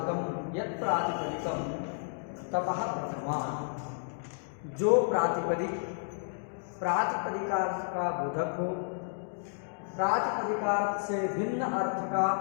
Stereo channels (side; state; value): right; silent; digital silence